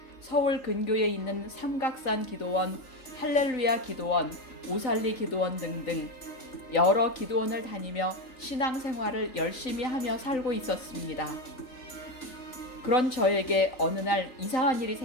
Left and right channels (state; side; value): late; right; 3.9 ms